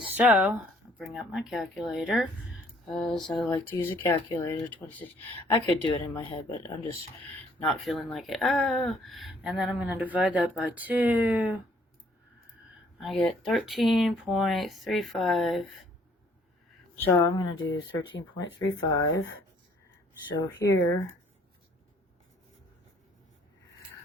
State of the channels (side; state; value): both; normal; correlation 0.62